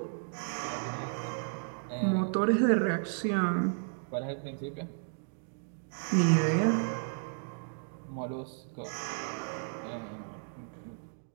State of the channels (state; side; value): silent; left; digital silence